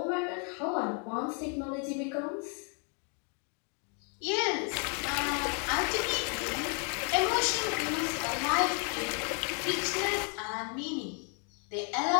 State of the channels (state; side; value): quieter; right; 39.1 dB